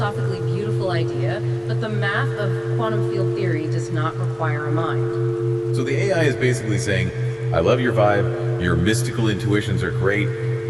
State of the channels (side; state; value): both; identical; correlation 1.00